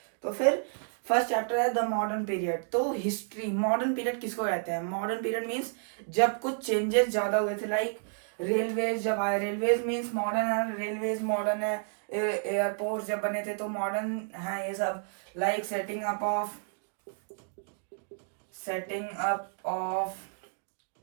तो फिर फर्स्ट चैप्टर है द मॉडर्न पीरियड। तो हिस्ट्री मॉडर्न पीरियड किसको कहते हैं? मॉडर्न पीरियड मीन्स जब कुछ चेंजेस ज़्यादा हुए थे। लाइक रेलवेज जब आए, रेलवेज मीन्स मॉडर्न है, रेलवेज मॉडर्न है। एयरपोर्ट जब बने थे तो मॉडर्न है ये सब। Like setting up of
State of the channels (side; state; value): left; silent; digital silence